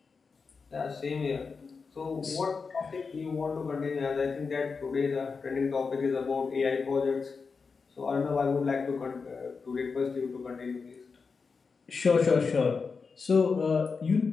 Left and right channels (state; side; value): quieter; right; 5.0 dB